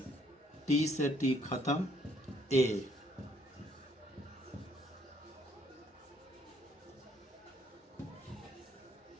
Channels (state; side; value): normal; both; correlation 0.66